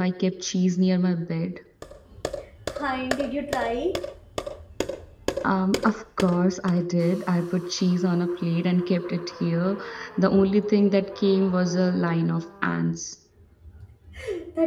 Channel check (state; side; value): identical; both; correlation 1.00